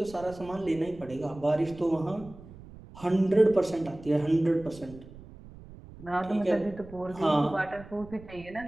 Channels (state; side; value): noise; right; rumble, 18 dB below the sound